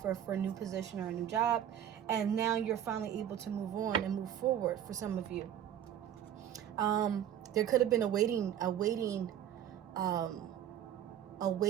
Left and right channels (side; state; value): left; quieter; 10.4 dB